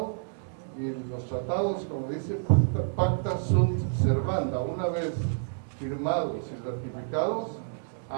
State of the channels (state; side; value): silent; left; digital silence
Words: y los tratados, como dice, pacta sunt servanda, una vez firmados y ratificados,